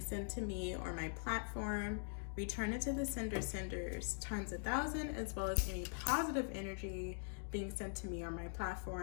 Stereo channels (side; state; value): right; silent; digital silence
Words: sent to me or my platform, return it to the senders times 1,000, as well as any positive energy being sent to me or my